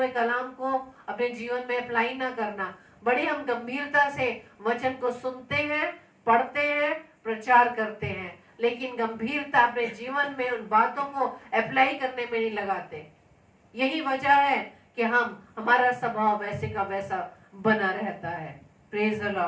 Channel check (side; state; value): both; identical; correlation 1.00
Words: कलाम को अपने जीवन में अप्लाई ना करना। बड़ी हम गंभीरता से वचन को सुनते हैं, पढ़ते हैं, प्रचार करते हैं, लेकिन गंभीरता अपने जीवन में उन बातों को अप्लाई करने में नहीं लगाते। यही वजह है कि हमारा स्वभाव वैसे का वैसा बना रहता है। Praise the